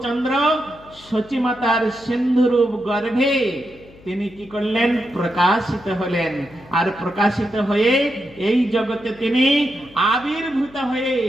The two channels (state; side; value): noise; left; hum, 23 dB below the sound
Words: শচী মাতার সিন্ধু রূপ গর্ভে তিনি কি করলেন? প্রকাশিত হলেন। আর প্রকাশিত হয়ে এই জগতে তিনি আবির্ভূত হয়ে